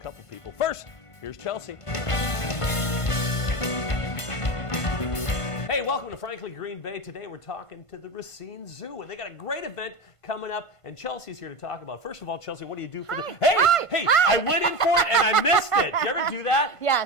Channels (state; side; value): late; right; 1.5 ms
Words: people. First, here's Chelsea. Hey, welcome to Frankly Green Bay. Today we're talking to the Racine Zoo, and they got a great event coming up, and Chelsea's here to talk about. First of all, Chelsea, what do you do for the... Hey, I went in for it and I missed it. You ever do that?